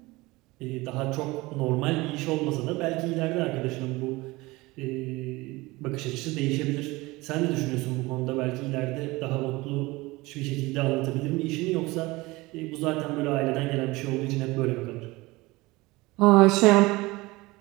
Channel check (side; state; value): left; quieter; 21.6 dB